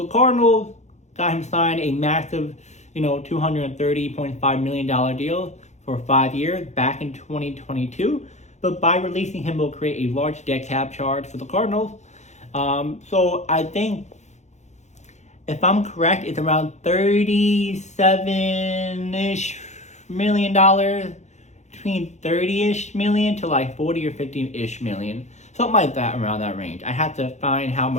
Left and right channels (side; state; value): right; late; 0.33 ms